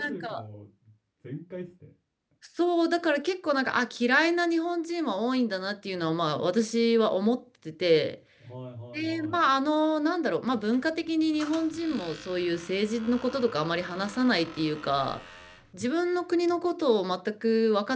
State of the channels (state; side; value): identical; both; correlation 1.00